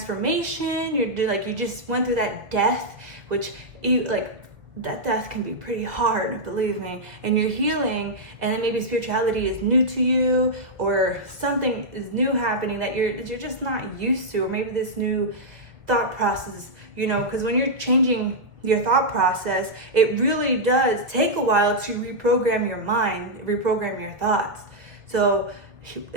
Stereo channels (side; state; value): left; late; 1.6 ms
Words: You just went through that death, which that death can be pretty hard, believe me, and you're healing, and then maybe spirituality is new to you, or something is new happening that you're just not used to, or maybe this new thought process, you know, because when you're changing your thought process, it really does take a while to reprogram your mind, reprogram your thoughts. So